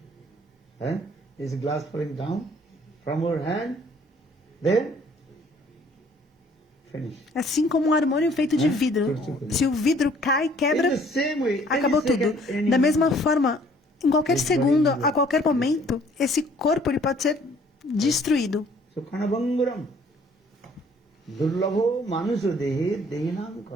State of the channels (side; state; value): both; normal; correlation 0.58